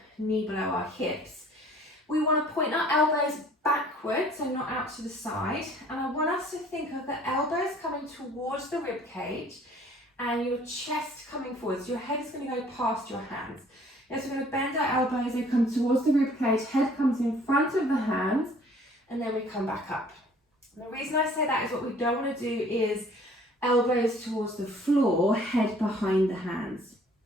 knee below our hips. We want to point our elbows backwards, so not out to the side. And I want us to think of the elbows coming towards the rib cage and your chest coming forwards. Your head is going to go past your hands. Yes, we're going to bend our elbows, they come towards the rib cage, head comes in front of the hands, and then we come back up. And the reason I say that is what we don't want to do is elbows towards the floor, head behind the hands.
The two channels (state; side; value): normal; both; correlation 0.55